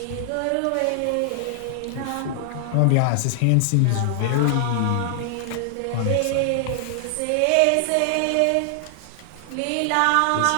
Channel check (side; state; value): both; different; correlation 0.00